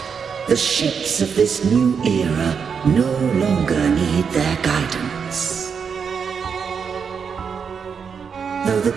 The ships of this new era no longer need their guidance. Though the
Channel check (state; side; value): quieter; left; 6.4 dB